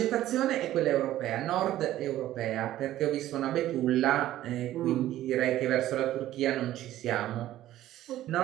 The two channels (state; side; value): quieter; left; 13.9 dB